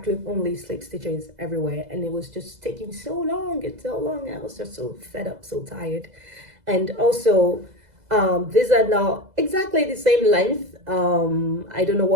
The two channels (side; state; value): left; late; 2.0 ms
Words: loop only slip stitches everywhere, and it was just taking so long and so long. I was just so fed up, so tired. And also, these are not exactly the same length. I don't know